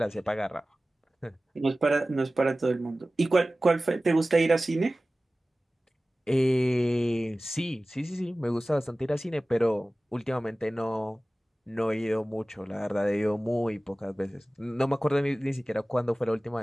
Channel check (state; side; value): normal; both; correlation 0.97